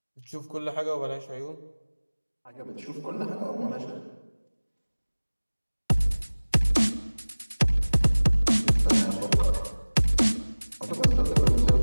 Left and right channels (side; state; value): both; inverted; correlation -1.00